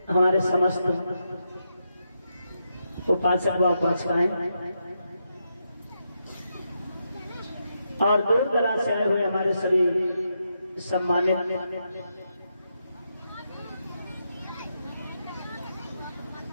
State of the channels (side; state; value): both; inverted; correlation -0.83